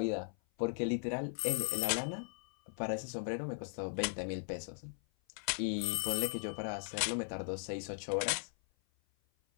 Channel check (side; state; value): right; silent; 52 dB below the other